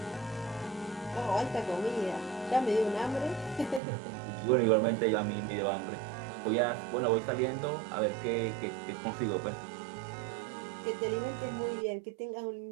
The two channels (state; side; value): drops out; left; at 3.8 s